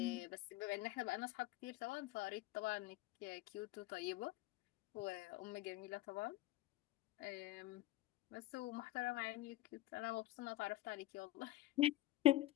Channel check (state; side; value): quieter; right; 16.7 dB